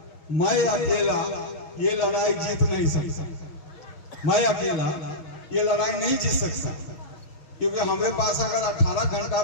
ये लड़ाई जीत नहीं सकता। मैं अकेला ये लड़ाई नहीं जीत सकता, क्योंकि हमारे पास अगर 18 घंटा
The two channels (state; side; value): late; right; 6.2 ms